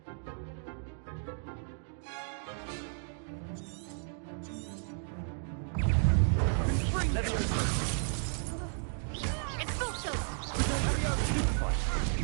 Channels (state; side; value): silent; left; 55 dB below the other